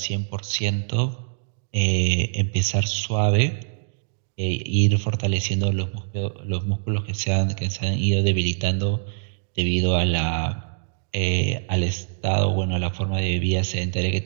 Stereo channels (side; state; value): left; silent; digital silence